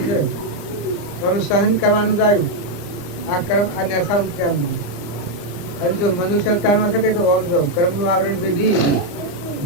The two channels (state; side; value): late; right; 34 ms